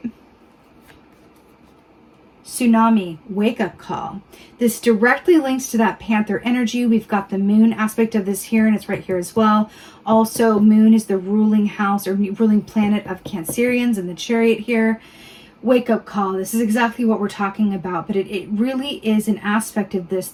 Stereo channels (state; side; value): identical; both; correlation 1.00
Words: Tsunami, wake-up call. This directly links to that Panther energy. We've got the moon aspect of this here, and it's right here as well. Also, moon is the ruling house or ruling planet of Cancerians and the chariot here. Wake-up call. This is exactly what we're talking about, but it really is an aspect of this